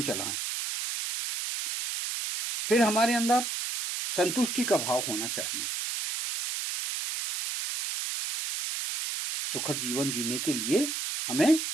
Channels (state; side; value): noise; right; hiss, 3 dB below the sound